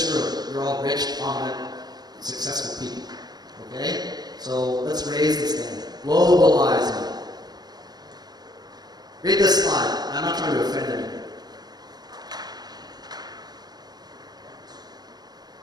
room, you're all rich, prominent, successful people. Okay? So let's raise this thing. Globalizing. Read this slide. I'm not trying to offend anyone.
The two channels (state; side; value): late; left; 0.19 ms